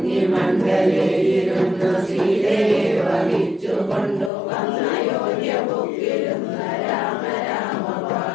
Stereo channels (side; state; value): right; drops out; at 4.3 s